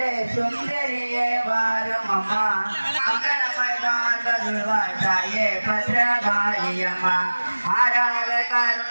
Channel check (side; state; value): both; inverted; correlation -1.00